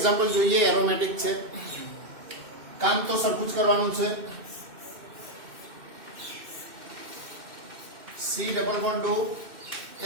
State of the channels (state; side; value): late; left; 2.6 ms